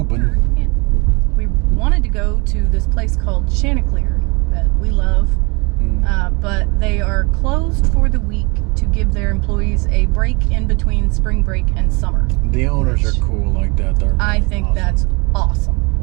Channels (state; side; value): quieter; left; 28.9 dB